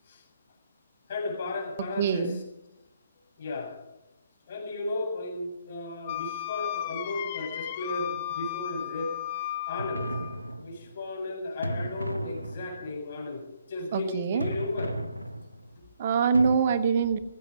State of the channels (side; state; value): both; inverted; correlation -0.68